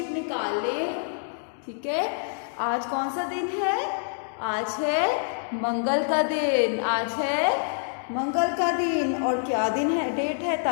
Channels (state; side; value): silent; right; digital silence